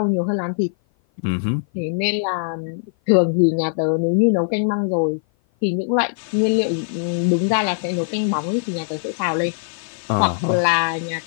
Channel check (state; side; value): silent; right; 56 dB below the other